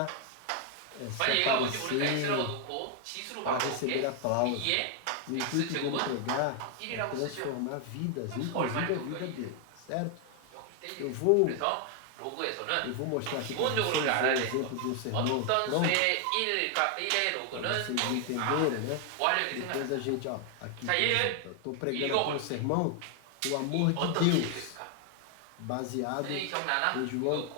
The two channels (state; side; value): different; both; correlation 0.00